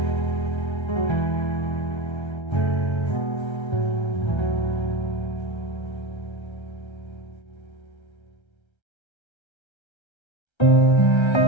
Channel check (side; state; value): right; late; 1.3 ms